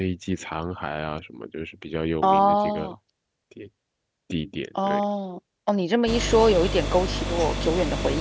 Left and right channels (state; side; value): identical; both; correlation 1.00